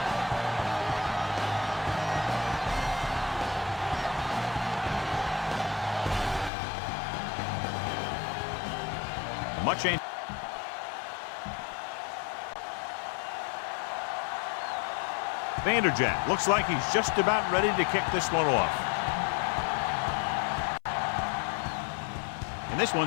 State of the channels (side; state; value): right; drops out; at 6.5 s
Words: Much ain't. Vanderjagt looks like he's just about ready to kick this one off. And this